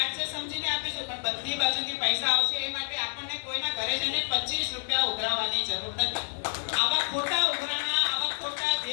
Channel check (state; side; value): silent; right; 59 dB below the other